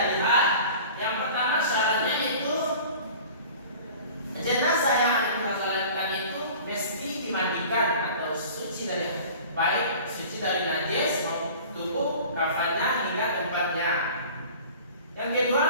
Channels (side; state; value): both; inverted; correlation -0.42